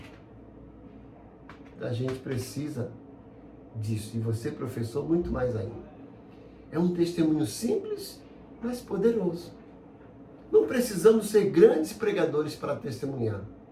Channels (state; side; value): identical; both; correlation 1.00